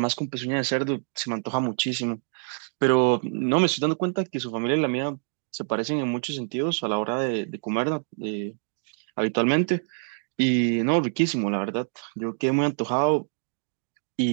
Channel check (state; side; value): silent; left; 61 dB below the other